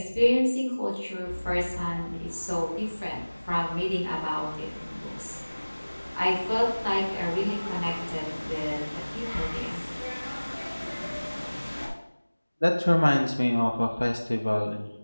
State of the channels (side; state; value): both; inverted; correlation -1.00